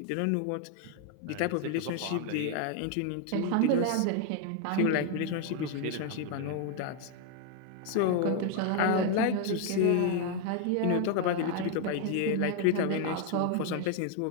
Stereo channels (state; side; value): different; both; correlation 0.01